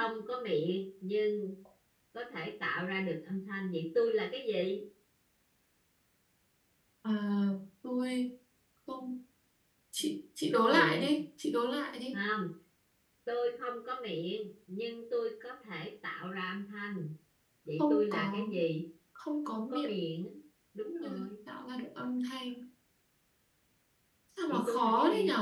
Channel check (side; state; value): both; identical; correlation 1.00